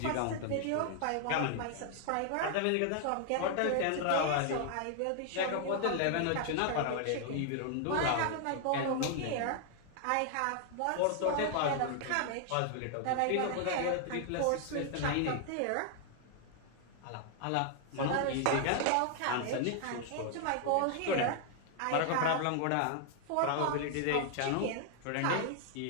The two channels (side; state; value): both; different; correlation 0.00